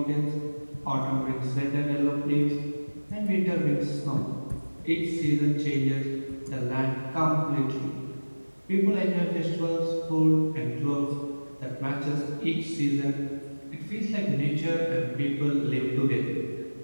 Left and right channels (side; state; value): both; inverted; correlation -1.00